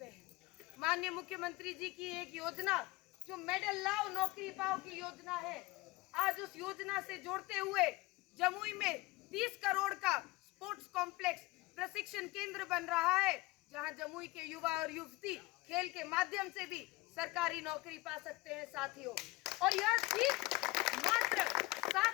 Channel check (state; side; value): quieter; right; 21.3 dB